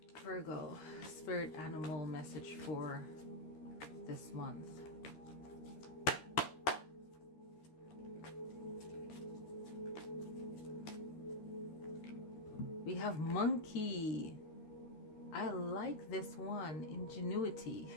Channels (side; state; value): right; late; 13 ms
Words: Virgo, spirit animal message for this month. We have monkey. I like this one, ingenuity.